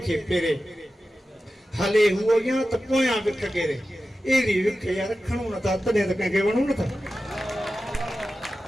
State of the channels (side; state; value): both; normal; correlation 0.93